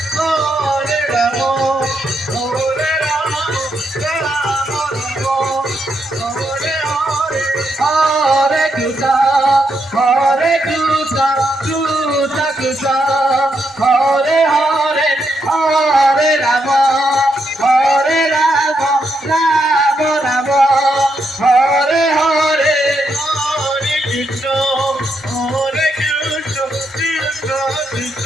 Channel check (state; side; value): normal; both; correlation 0.80